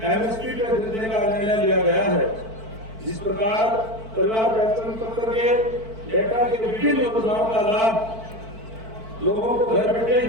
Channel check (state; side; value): late; left; 4.5 ms